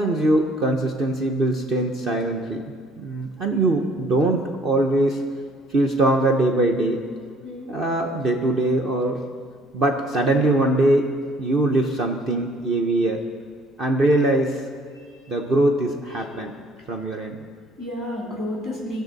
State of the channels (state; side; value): normal; both; correlation 0.59